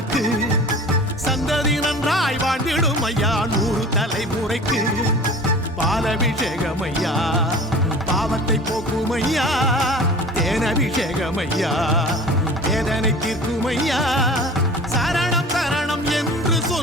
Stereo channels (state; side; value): normal; both; correlation 0.40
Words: சந்ததி நன்றாய் வாழ்ந்திடும் ஐயா 100 தலைமுறைக்கு பாலபிஷேகம் ஐயா பாவத்தை போக்கும் ஐயா தேனபிஷேகம் ஐயா வேதனை தீர்க்கும் ஐயா சரணம் சரணம் என்று